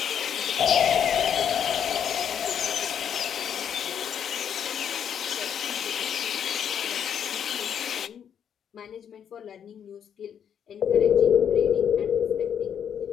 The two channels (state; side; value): quieter; right; 8.5 dB